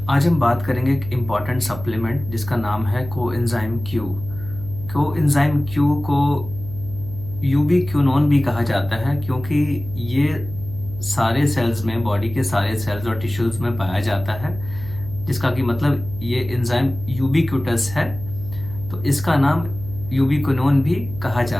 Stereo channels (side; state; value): right; noise; hum, 12 dB below the sound